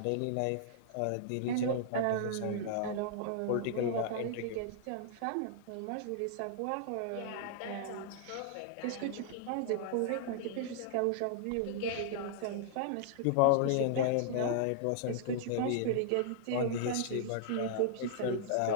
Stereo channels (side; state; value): both; different; correlation -0.01